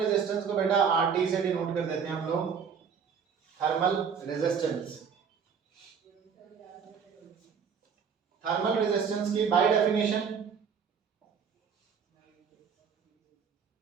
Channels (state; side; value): quieter; left; 6.6 dB